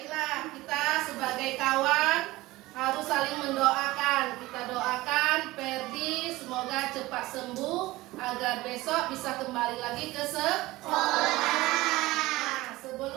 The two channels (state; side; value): quieter; left; 19.0 dB